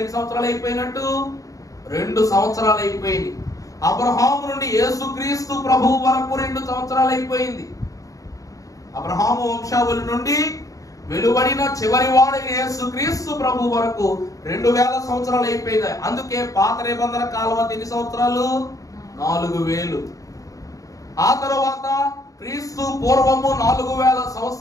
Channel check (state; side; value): late; right; 0.16 ms